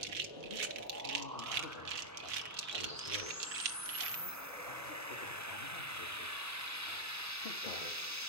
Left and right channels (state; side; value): normal; both; correlation -0.02